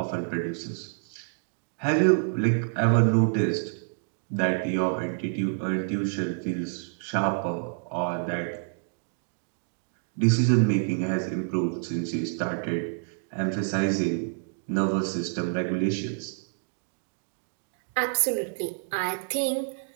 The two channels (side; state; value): left; silent; digital silence